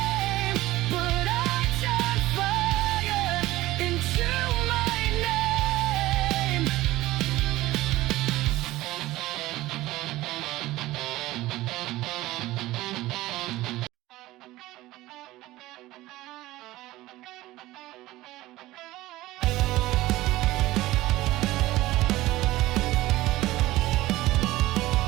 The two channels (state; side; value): quieter; left; 17.4 dB